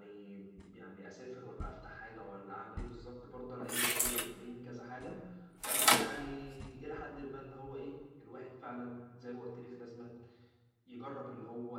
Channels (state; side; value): identical; both; correlation 1.00